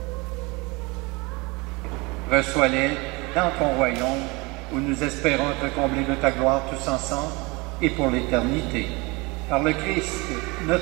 Reçois-les dans ton royaume, où nous espérons te combler de ta gloire tous ensemble et pour l'éternité. Par le Christ,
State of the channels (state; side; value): quieter; left; 25.7 dB